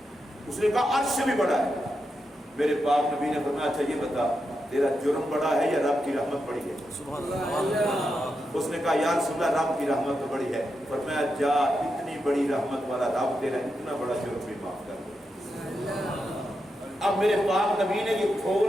اس نے کہا عرش سے بھی بڑا ہے. میرے پاک نبی نے فرمایا اچھا یہ بتا تیرا جرم بڑا ہے یا رب کی رحمت بڑی ہے؟ سبحان اللہ. اس نے کہا یا رسول اللہ رب کی رحمت تو بڑی ہے. فرمایا جا اتنی بڑی رحمت والا رب تیرا اتنا بڑا جرم بھی معاف کر دے. اب میرے پاک نبی نے یہ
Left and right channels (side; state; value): both; normal; correlation 0.86